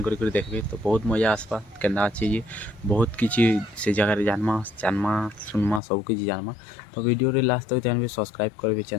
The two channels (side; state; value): right; drops out; at 5.8 s